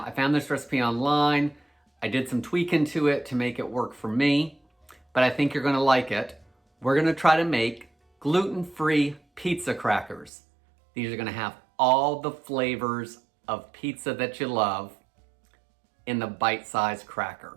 I found this recipe online. I did some tweaking to it to make it work for me, but I think you're gonna like it. We're gonna try to make gluten-free pizza crackers. These are gonna have all the flavors of pizza that you love in the bite-sized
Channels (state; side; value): drops out; left; at 10.3 s